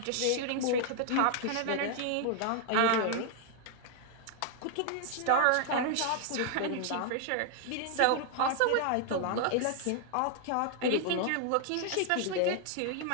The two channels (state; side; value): different; both; correlation 0.00